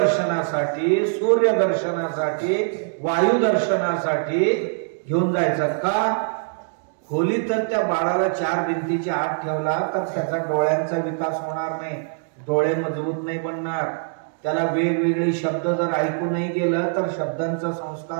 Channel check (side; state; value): left; silent; digital silence